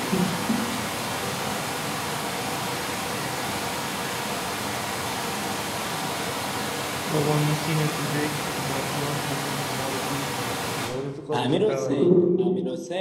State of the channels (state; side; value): identical; both; correlation 1.00